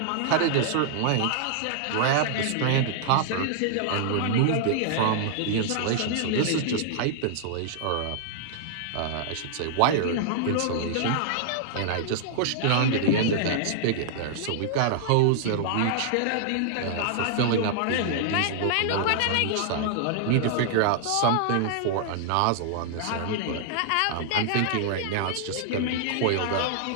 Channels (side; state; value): both; different; correlation -0.01